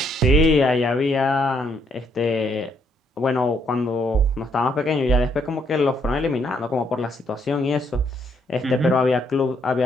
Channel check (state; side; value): normal; both; correlation 0.71